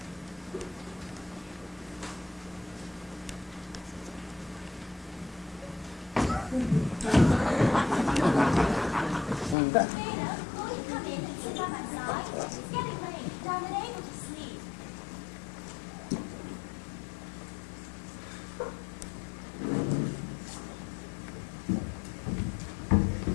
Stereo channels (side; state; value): right; drops out; at 9.6 s